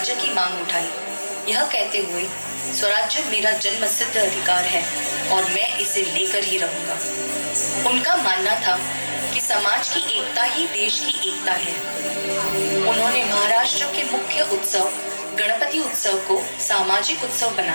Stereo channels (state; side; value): inverted; both; correlation -1.00